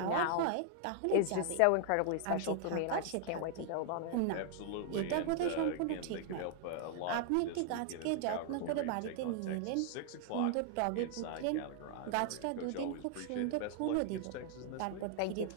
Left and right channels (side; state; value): both; different; correlation 0.00